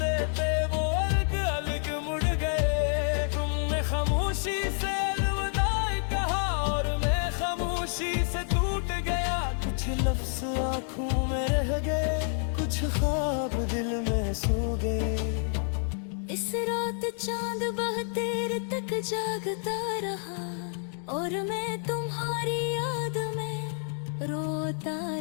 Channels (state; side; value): silent; right; 56 dB below the other